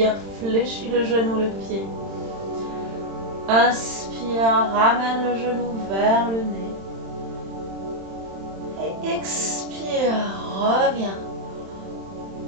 fléchis le genou, le pied. Inspire, ramène le genou vers le nez. Et expire, reviens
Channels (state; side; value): late; left; 31 ms